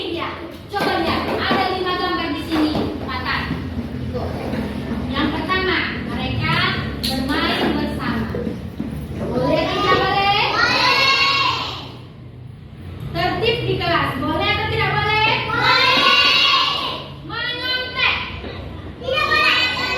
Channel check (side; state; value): both; identical; correlation 1.00